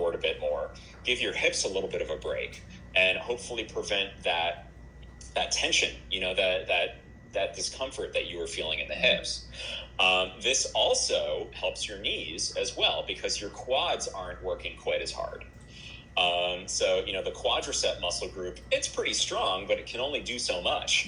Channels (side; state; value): both; identical; correlation 1.00